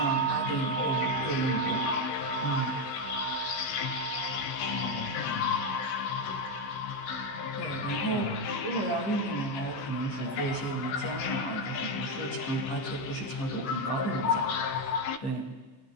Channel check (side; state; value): right; late; 16 ms